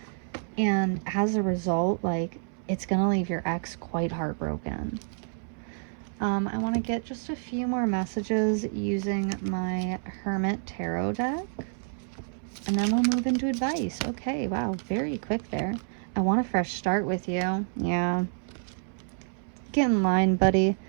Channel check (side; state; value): left; silent; 59 dB below the other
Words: And as a result, like it's going to leave your ex quite heartbroken. I want to get just a few more messages using my Hermit Tarot deck. And then we'll move into advice. Okay, wow, very quick there. I want a fresh start with you. Yeah. Get in line, buddy.